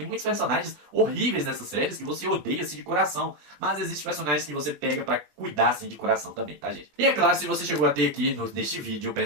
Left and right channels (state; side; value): late; left; 20 ms